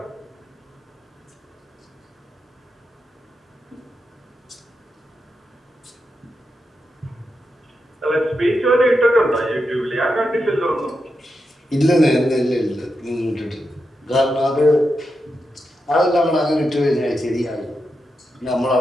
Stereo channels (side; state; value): both; normal; correlation 0.87